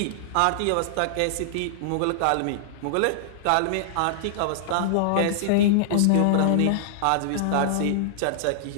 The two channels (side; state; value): both; different; correlation -0.01